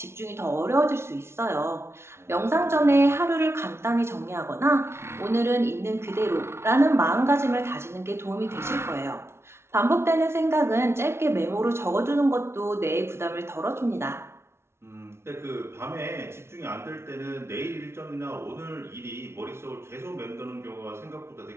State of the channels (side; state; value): left; late; 0.12 ms